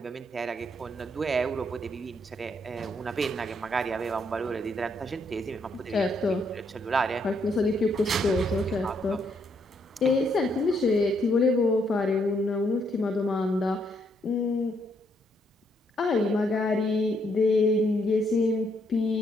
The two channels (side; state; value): both; normal; correlation 0.74